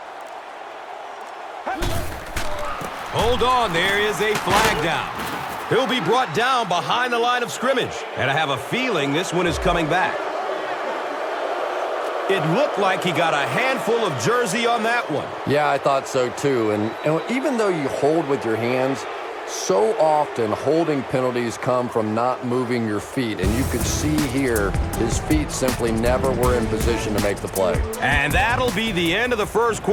Hold on, there is a flag down. He'll be brought down behind the line of scrimmage. And I have a feeling this one is coming back. It looked like he got a handful of jersey on that one. Yeah, I thought so too. And even though you hold with your hands, so often holding penalties come from not moving your feet. And you could see here, his feet simply never were in position to make the play. And that'll be the end of the first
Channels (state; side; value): identical; both; correlation 1.00